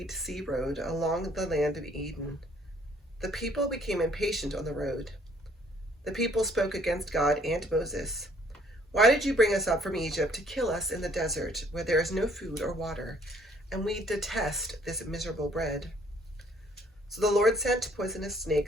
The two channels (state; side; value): normal; both; correlation 0.61